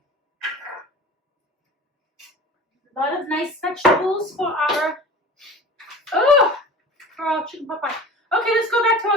A lot of nice vegetables for our chicken pot pie. Okay, let's go back to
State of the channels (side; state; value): both; normal; correlation 0.38